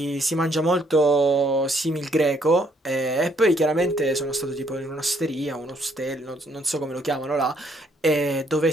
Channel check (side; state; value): both; normal; correlation 0.68